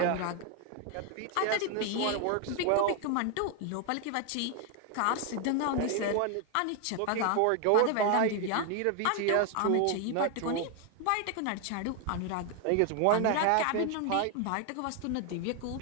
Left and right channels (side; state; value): both; different; correlation 0.01